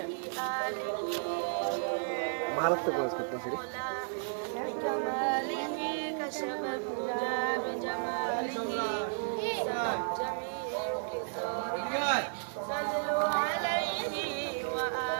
भारत से कोर्स कितना सीरी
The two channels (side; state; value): left; silent; 56 dB below the other